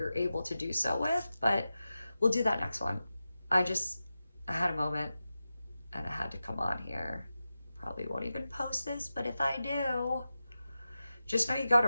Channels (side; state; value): both; inverted; correlation -0.93